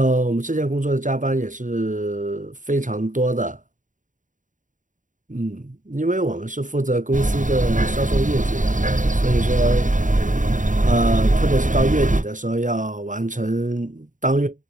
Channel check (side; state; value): left; late; 0.37 ms